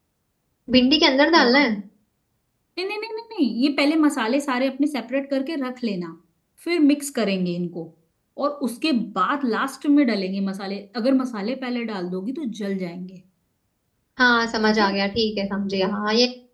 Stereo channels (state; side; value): identical; both; correlation 1.00